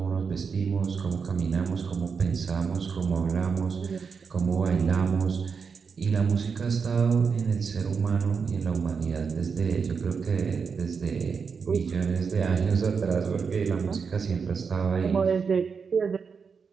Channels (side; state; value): left; quieter; 5.7 dB